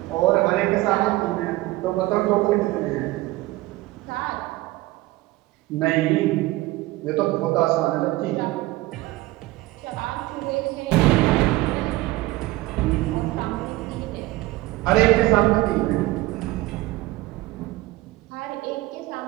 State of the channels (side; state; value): left; quieter; 18.7 dB